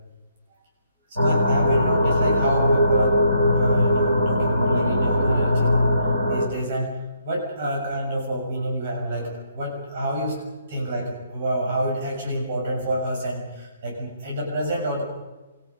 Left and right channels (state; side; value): inverted; both; correlation -0.73